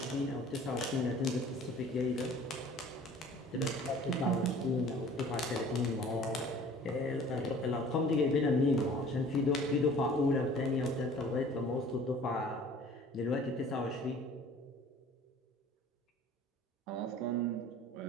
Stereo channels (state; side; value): normal; both; correlation 0.49